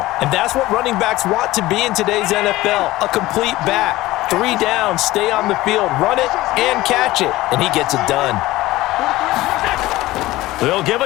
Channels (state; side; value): quieter; right; 17.8 dB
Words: And that's what running backs want to be in today's NFL, a complete back. 3 down, stay on the field, run it, and catch it. And he gets it done. They'll give